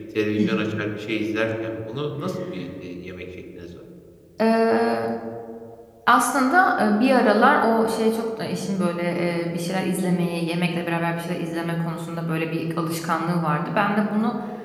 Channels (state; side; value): identical; both; correlation 1.00